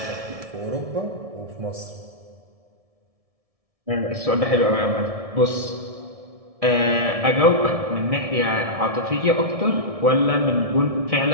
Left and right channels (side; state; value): left; late; 1.7 ms